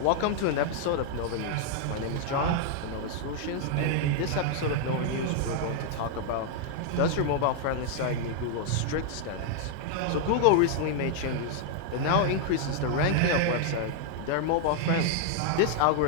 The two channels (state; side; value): different; both; correlation 0.00